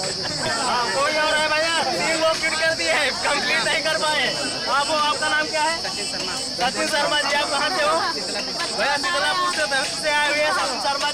कोई और है भैया? 3 लोग फिट कर दिए हैं, कंप्लीट नहीं कर पाए। आप हो? आपका नाम क्या है? सचिन शर्मा जी। आप कहाँ से हो? भैया शीतलापुर से आए हुए हैं सचिन शर्मा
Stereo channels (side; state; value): right; noise; rumble, 24 dB below the sound